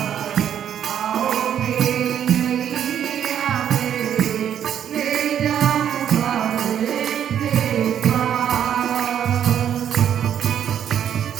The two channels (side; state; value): left; quieter; 9.5 dB